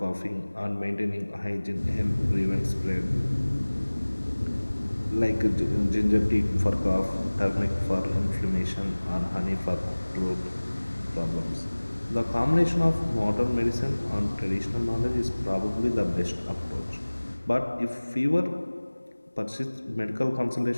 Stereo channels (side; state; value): both; inverted; correlation -1.00